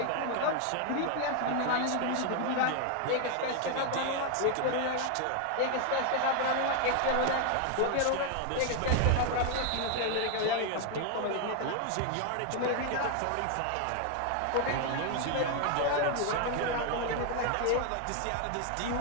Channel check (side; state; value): both; different; correlation 0.00